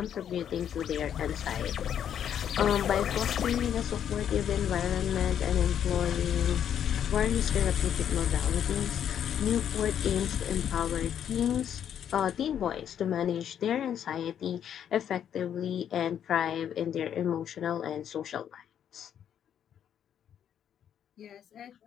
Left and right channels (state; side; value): quieter; right; 9.3 dB